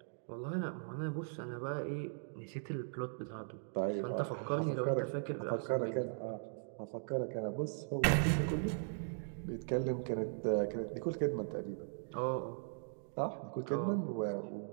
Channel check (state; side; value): silent; left; digital silence